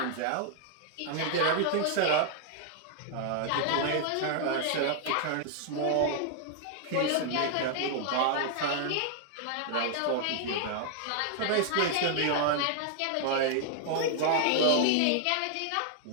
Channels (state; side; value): different; both; correlation -0.01